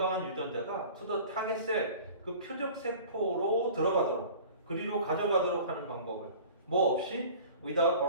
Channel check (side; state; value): both; inverted; correlation -0.43